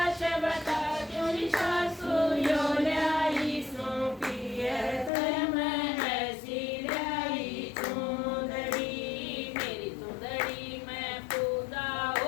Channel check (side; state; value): right; drops out; at 5.1 s